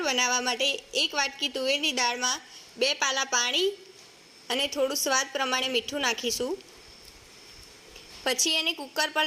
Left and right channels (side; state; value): both; identical; correlation 1.00